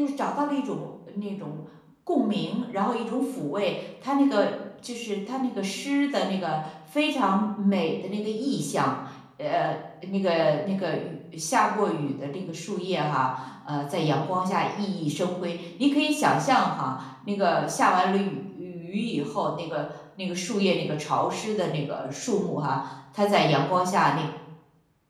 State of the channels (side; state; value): both; identical; correlation 1.00